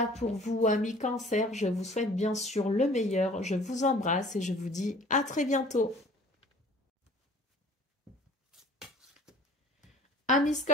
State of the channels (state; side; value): normal; both; correlation 0.50